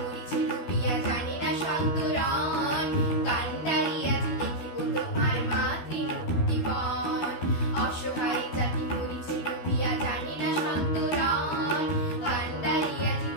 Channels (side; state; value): right; late; 12 ms